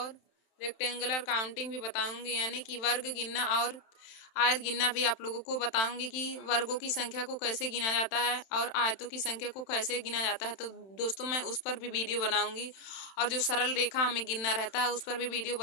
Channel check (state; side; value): late; right; 31 ms